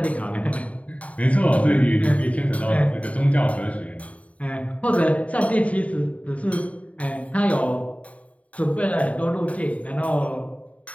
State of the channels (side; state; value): right; late; 0.067 ms